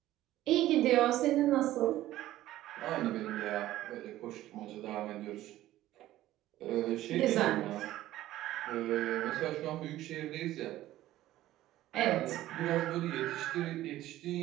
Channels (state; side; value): quieter; left; 14.7 dB